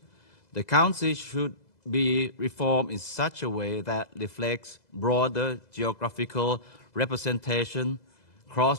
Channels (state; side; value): late; right; 2.0 ms